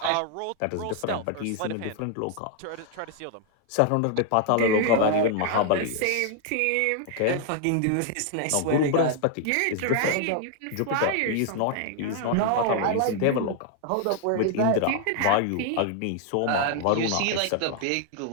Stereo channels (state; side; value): different; both; correlation 0.00